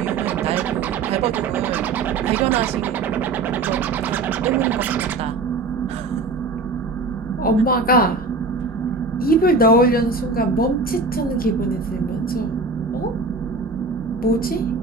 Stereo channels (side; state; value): left; quieter; 3.7 dB